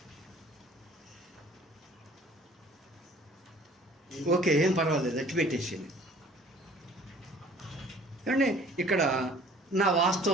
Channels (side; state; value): both; normal; correlation 0.52